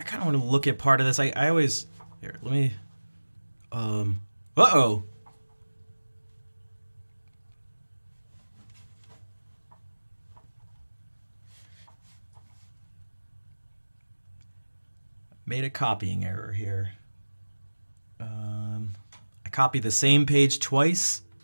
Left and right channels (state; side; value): inverted; both; correlation -1.00